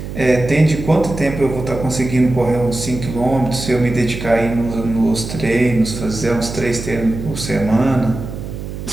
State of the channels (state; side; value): noise; right; hum, 8 dB below the sound